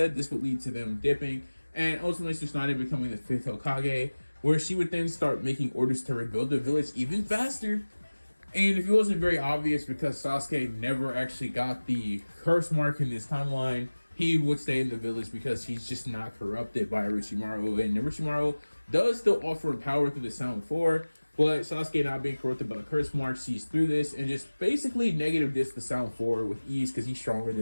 this would lead to them dipping, and ultimately Tsunade becoming the 5th Hokage, where she would then start making orders to rebuild the village even faster. And if it wasn't very obvious, because Sasuke never actually got the curse mark in this timeline, he would stay in the village because he's just not corrupted by Orochimaru. And Orochimaru does still offer power through the Sound 4, But Sasuke, not being corrupted by the curse mark, sees through this and just basically negative discs the sound forward with ease because he's stronger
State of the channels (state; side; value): inverted; both; correlation -1.00